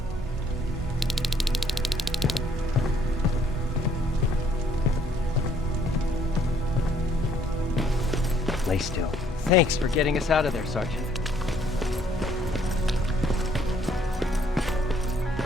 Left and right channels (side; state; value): both; normal; correlation 0.64